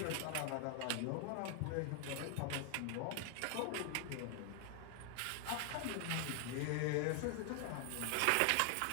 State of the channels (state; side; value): different; both; correlation 0.00